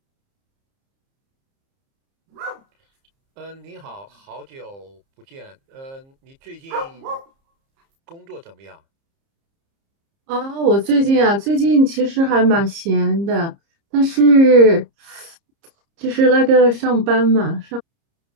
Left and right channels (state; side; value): late; left; 30 ms